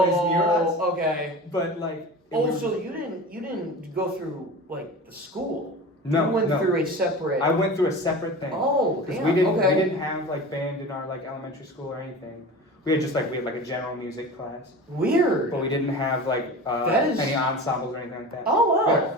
us. okay. But it Oh, was- so you didn't go through the school? No, you went no. through a separate. I went through a separate thing. Oh, Because damn. we didn't okay. have band in our elementary school or anything. We had just we had a general music class, Weird. but we didn't have That is- any ensembles or anything like that. Oh We had a wow.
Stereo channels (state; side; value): normal; both; correlation 0.33